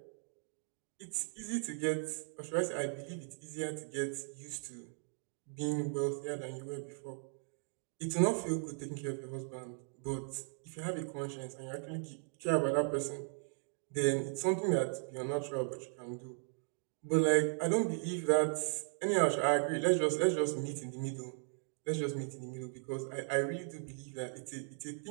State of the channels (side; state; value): left; silent; 53 dB below the other